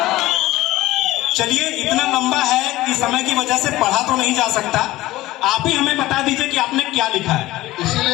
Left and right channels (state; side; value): quieter; right; 17.1 dB